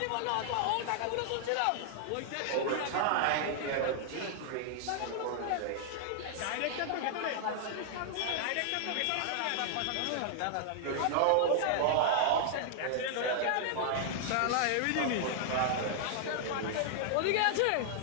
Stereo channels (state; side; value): different; both; correlation -0.01